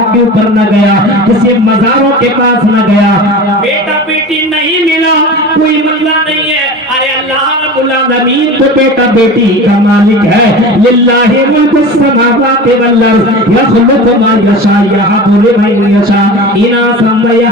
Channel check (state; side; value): normal; both; correlation 0.33